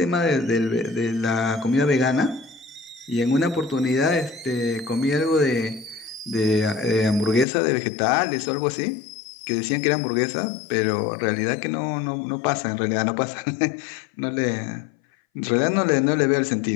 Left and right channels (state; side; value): drops out; right; at 7.5 s